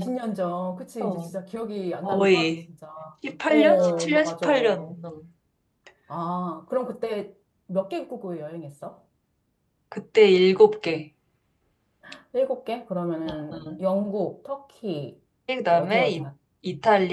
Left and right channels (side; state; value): both; identical; correlation 1.00